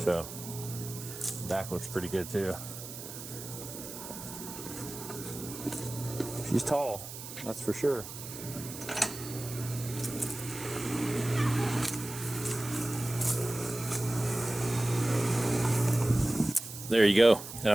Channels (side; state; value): right; noise; hiss, 11 dB below the sound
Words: So, back looks pretty good too. She's tall, that's for sure. There you go. And